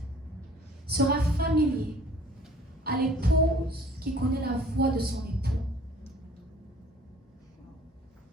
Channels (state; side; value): normal; both; correlation 0.52